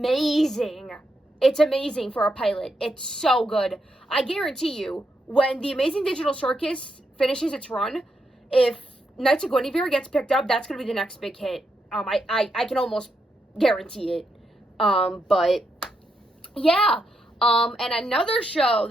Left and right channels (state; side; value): normal; both; correlation 0.82